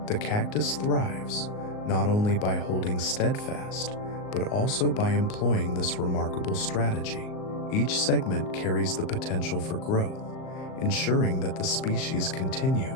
The cactus thrives not only by holding steadfast, but also by employing this remarkable strategy. Each segment carries the potential for growth, ensuring that the species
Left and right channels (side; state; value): right; late; 38 ms